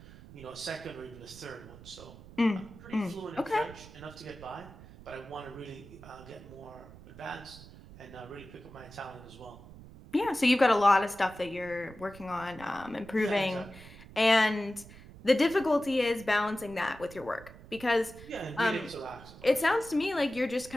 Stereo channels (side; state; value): right; noise; rumble, 18 dB below the sound